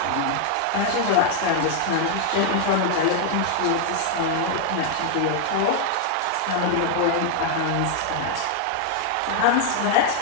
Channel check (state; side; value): different; both; correlation 0.00